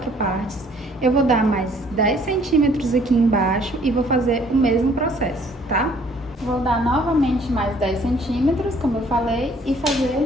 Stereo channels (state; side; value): normal; both; correlation 0.59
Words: partes, eu vou dar mais 10 centímetros aqui embaixo e vou fazer o mesmo processo, tá? Vou dar novamente mais 10 centímetros, como eu falei, e